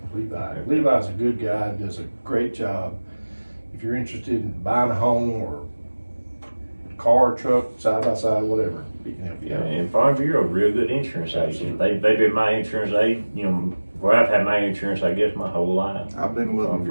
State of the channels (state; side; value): inverted; both; correlation -1.00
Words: Levi's a good guy, does a great job. If you're interested in buying a home or car, truck, side by side, whatever, he can help you out. And Farm Bureau, real good insurance agent. They've been my insurance agent, where I've had my insurance, I guess, my whole life. I've been with them